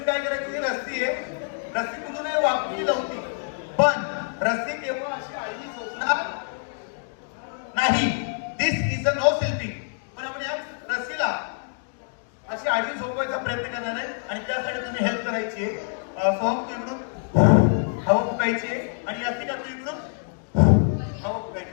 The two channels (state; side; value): silent; right; digital silence